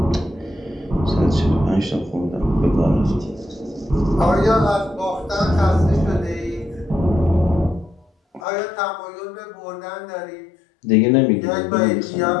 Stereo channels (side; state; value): right; drops out; at 8.4 s